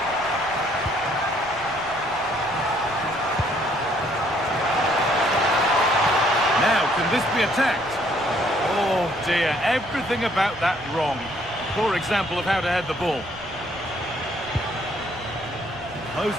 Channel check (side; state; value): right; noise; rumble, 20 dB below the sound